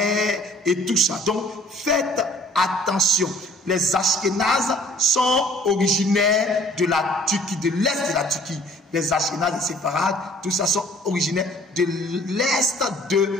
et tout ça. Donc, faites attention. Les Ashkénazes sont originaires de la Turquie, de l'est de la Turquie. Les Ashkénazes, les Séfarades, tout ça sont originaires de l'est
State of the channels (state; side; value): normal; both; correlation 0.54